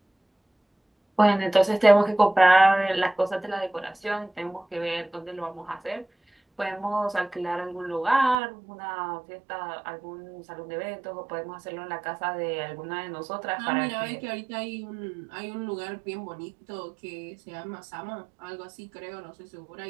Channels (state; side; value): drops out; left; at 8.3 s